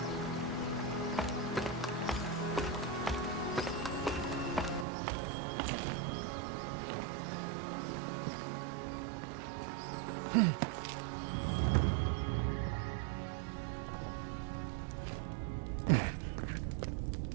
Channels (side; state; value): left; drops out; at 4.9 s